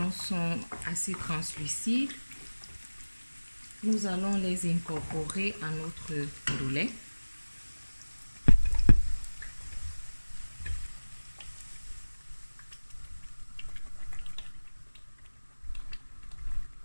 sont assez translucides, Nous allons les incorporer à notre ndolé.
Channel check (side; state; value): both; inverted; correlation -1.00